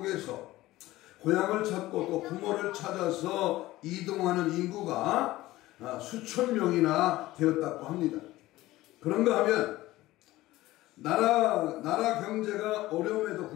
고향을 찾고 또 부모를 찾아서 이동하는 인구가 수천 명이나 되었다고 합니다. 그런가 하면 나라 경제가 어려움에도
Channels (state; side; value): quieter; right; 17.2 dB